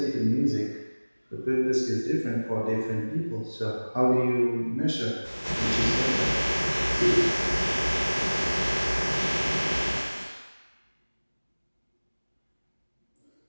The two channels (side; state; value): both; inverted; correlation -1.00